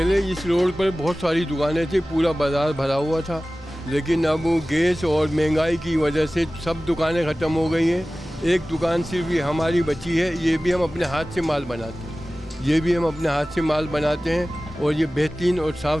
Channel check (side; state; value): both; normal; correlation 0.97